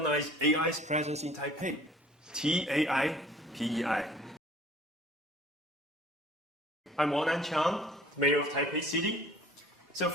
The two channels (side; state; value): both; normal; correlation 0.51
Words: AI's presence in Taipei. TAIPEI. I'm Wan-an Chiang, Mayor of Taipei City. So